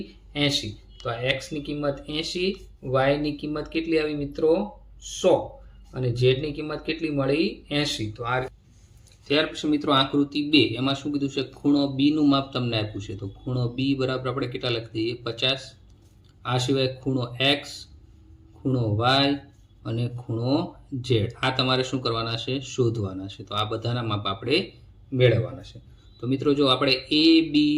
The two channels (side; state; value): both; identical; correlation 1.00